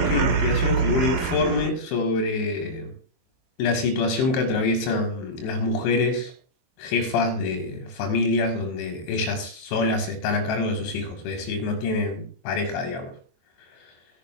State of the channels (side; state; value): right; late; 23 ms